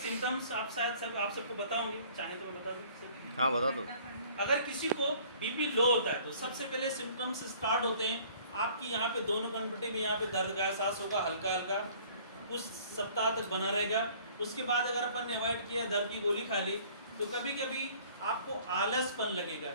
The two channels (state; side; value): inverted; both; correlation -0.53